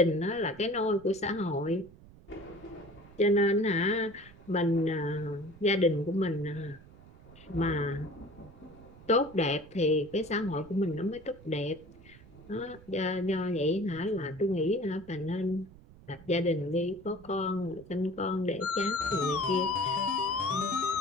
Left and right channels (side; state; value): right; noise; rumble, 21 dB below the sound